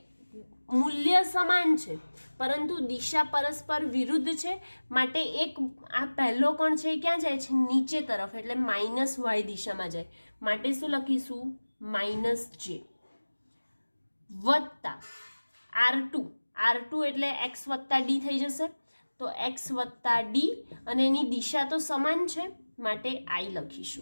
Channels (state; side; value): inverted; both; correlation -1.00